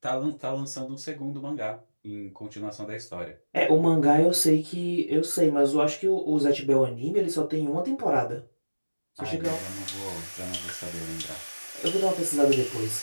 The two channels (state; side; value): inverted; both; correlation -1.00